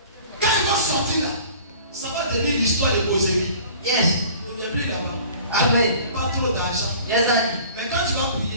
Quand ils vont sortir là, ça va devenir l'histoire de Bosélie. Yes. Il n'y a plus là-bas. Amen. Pas trop d'argent. Yes, Daddy. Mais quand tu vas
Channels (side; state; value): both; inverted; correlation -0.47